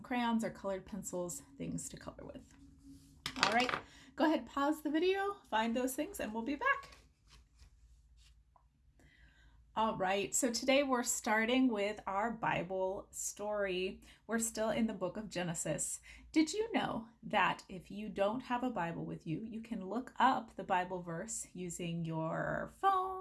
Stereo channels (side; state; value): both; identical; correlation 1.00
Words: crayons or colored pencils, things to color with. All right, go ahead, pause the video, find those things, and we'll be back. All right, so today we're starting with our Bible story. We're still in the book of Genesis. Did you know that if you don't have a Bible with you, you can look up the Bible verse using your